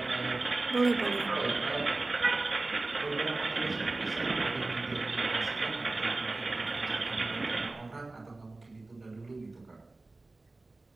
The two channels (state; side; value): quieter; left; 3.2 dB